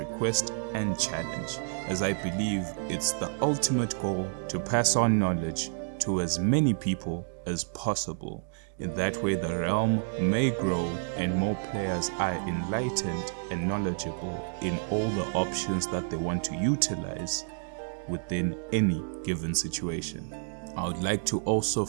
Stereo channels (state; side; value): silent; left; digital silence